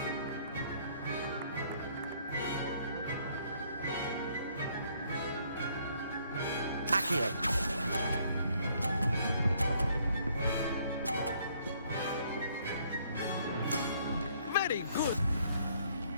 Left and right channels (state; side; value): inverted; both; correlation -0.66